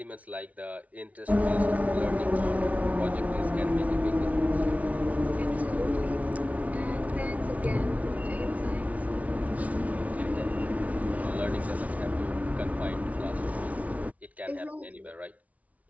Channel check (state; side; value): late; left; 0.069 ms